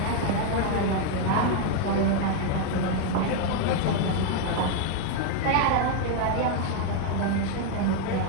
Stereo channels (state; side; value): different; both; correlation 0.00